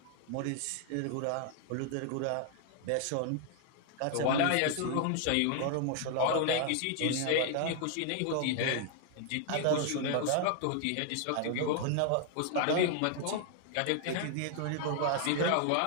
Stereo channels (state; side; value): different; both; correlation 0.00